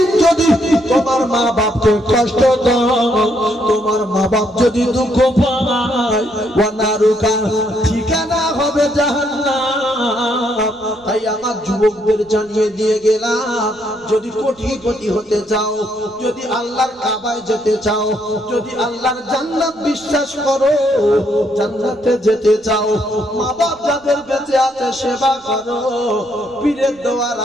যদি তোমার মা বাপকে কষ্ট দাও, তোমার মা বাপ যদি দুঃখ পায়, ওয়ানারুকা ঠিকানা হবে জাহান্নাম। তাই আমার যুবকদের জানিয়ে দিয়ে গেলাম, যদি কোটিপতি হতে চাও, যদি আল্লাহর কাবায় যেতে চাও, যদি আল্লাহর জান্নাত বিশ্বাস করো, জান্নাতে যেতে চাও, মা বাপ যাদের বেঁচে আছে সেবা করো। পীরের দোয়ার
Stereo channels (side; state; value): right; noise; rumble, 30 dB below the sound